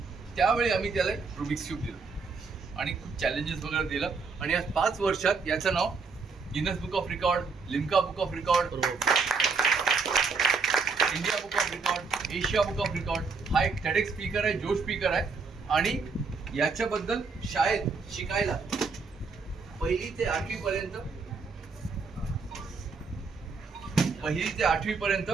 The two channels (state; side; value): quieter; left; 4.7 dB